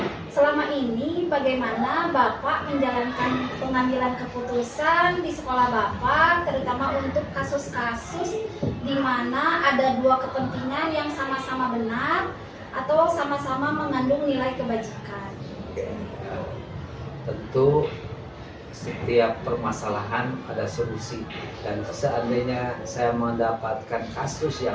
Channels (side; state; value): both; identical; correlation 1.00